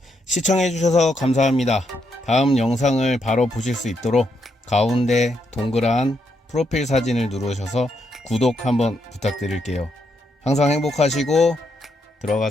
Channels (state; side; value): normal; both; correlation 0.78